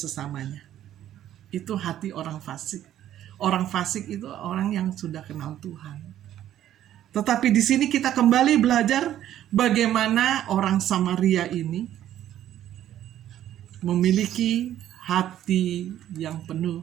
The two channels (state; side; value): quieter; left; 11.9 dB